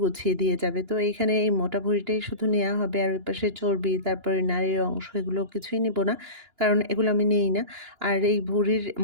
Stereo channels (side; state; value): left; late; 2.9 ms